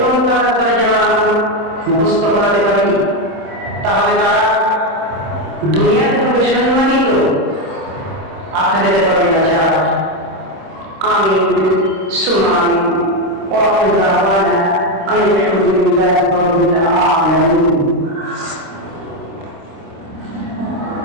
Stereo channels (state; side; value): late; left; 26 ms